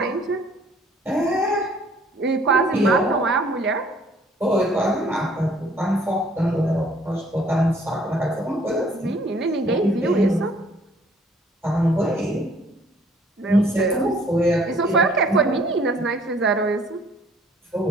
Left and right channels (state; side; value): normal; both; correlation 0.59